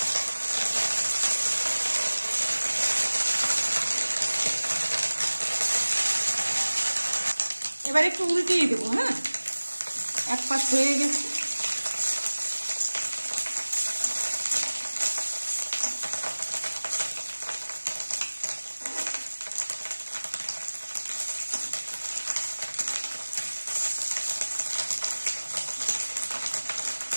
এবার একটু উল্টিয়ে দেবো। হ্যাঁ, এক পাশ হয়ে গেছে।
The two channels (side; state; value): both; inverted; correlation -1.00